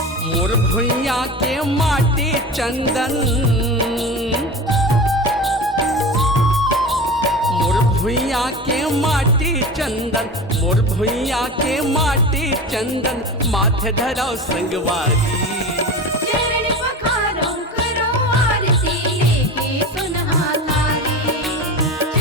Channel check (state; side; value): normal; both; correlation 0.30